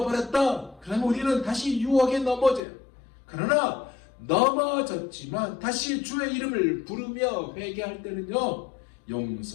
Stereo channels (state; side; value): drops out; right; at 2.6 s